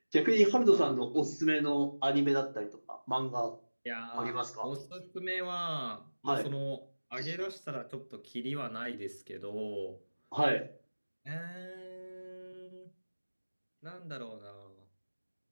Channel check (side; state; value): both; inverted; correlation -1.00